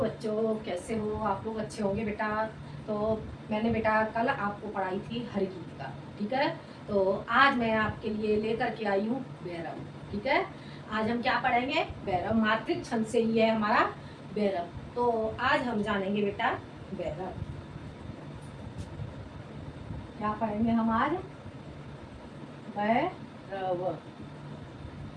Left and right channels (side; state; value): both; identical; correlation 1.00